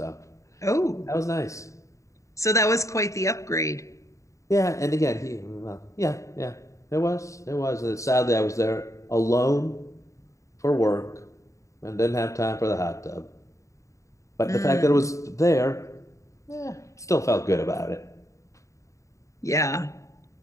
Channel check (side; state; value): right; late; 0.15 ms